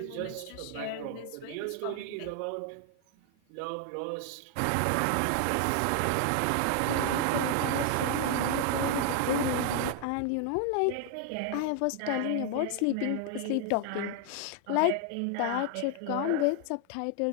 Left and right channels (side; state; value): both; different; correlation 0.00